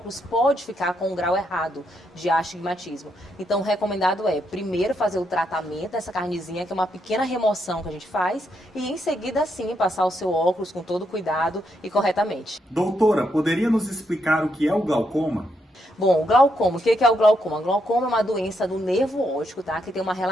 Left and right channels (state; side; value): normal; both; correlation 0.79